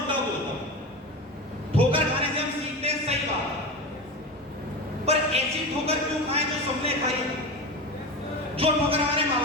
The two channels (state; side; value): normal; both; correlation 0.25